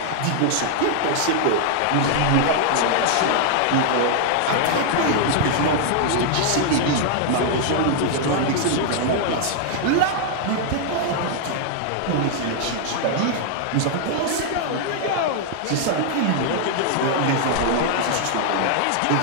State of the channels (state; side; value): different; both; correlation -0.01